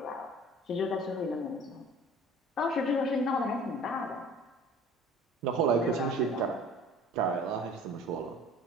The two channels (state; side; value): normal; both; correlation 0.46